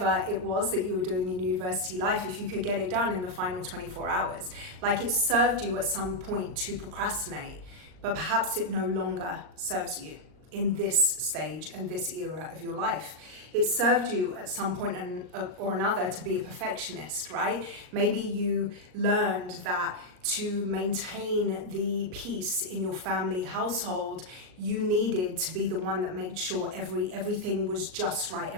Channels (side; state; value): left; late; 38 ms